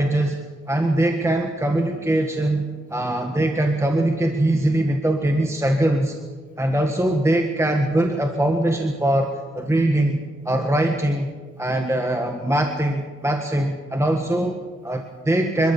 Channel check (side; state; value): both; normal; correlation 0.83